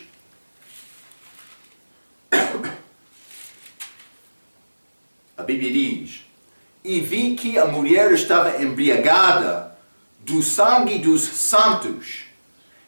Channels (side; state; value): both; inverted; correlation -1.00